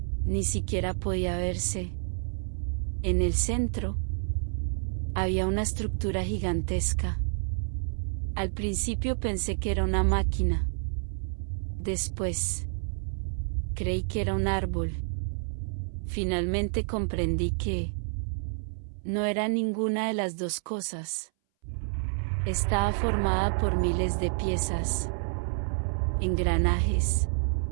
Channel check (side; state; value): left; silent; 59 dB below the other